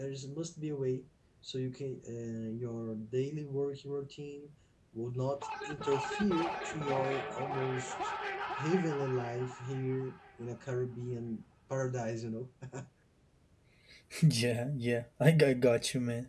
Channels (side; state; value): both; identical; correlation 1.00